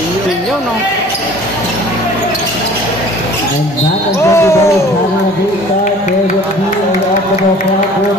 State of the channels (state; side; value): normal; both; correlation 0.48